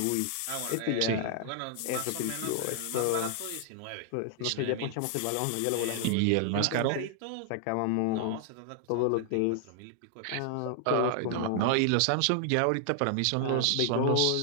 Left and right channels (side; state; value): both; different; correlation 0.00